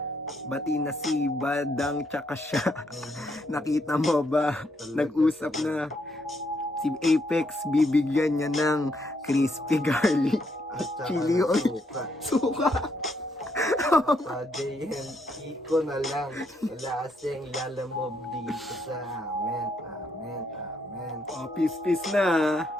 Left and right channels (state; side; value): normal; both; correlation 0.75